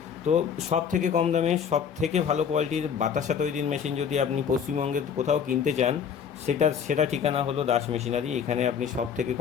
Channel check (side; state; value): right; quieter; 7.4 dB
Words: তো সব থেকে কম দামে সব থেকে ভালো কোয়ালিটির বাতাসা তৈরির মেশিন যদি আপনি পশ্চিমবঙ্গে কোথাও কিনতে চান, সেটা ঠিকানা হলো দাস মেশিনারি। এখানে আপনি সব থেকে